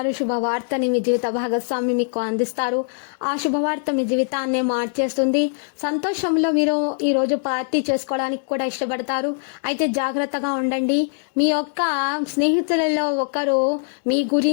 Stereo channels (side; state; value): right; silent; digital silence